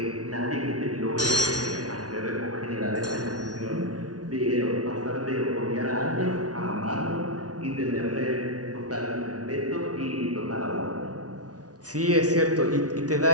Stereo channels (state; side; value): late; left; 0.68 ms